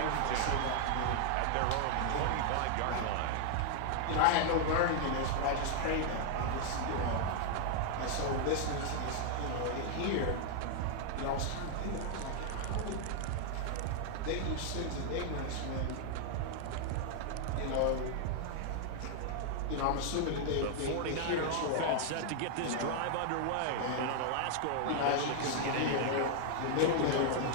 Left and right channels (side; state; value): both; different; correlation 0.00